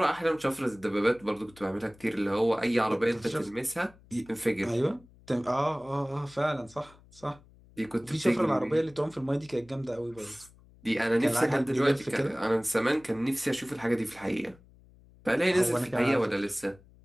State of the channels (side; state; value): left; noise; hum, 26 dB below the sound